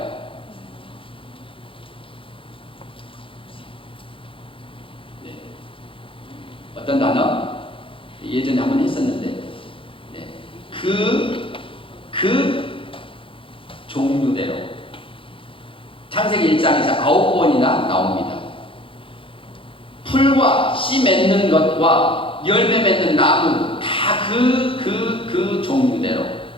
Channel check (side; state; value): right; late; 0.25 ms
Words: 네. 어떤 단어? 예전에 한번 했었는데, 네. 그 종류대로 창세기 1장에서 9번이나 나옵니다. 풀과 씨 맺는 것과 열매 맺는 나무 다 그 종류대로,